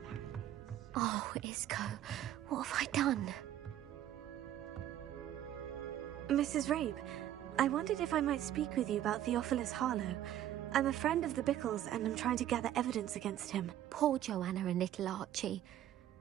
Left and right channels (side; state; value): left; quieter; 12.0 dB